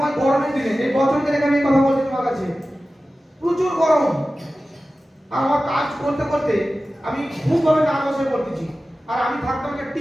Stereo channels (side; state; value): both; normal; correlation 0.95